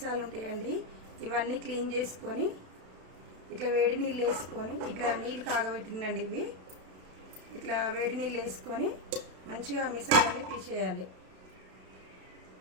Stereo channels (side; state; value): left; late; 32 ms